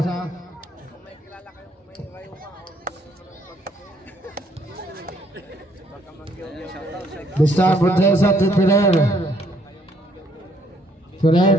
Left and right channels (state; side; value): normal; both; correlation 0.67